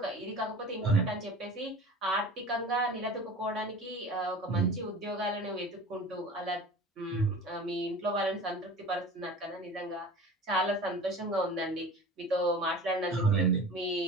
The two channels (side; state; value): both; normal; correlation 0.38